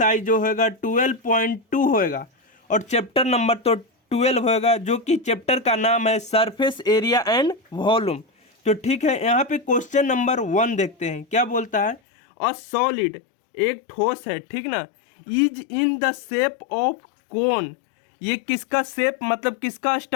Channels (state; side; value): drops out; right; at 12.0 s